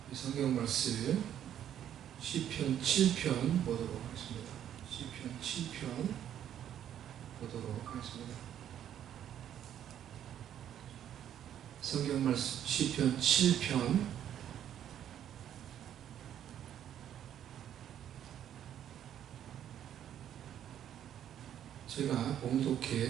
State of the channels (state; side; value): quieter; left; 10.3 dB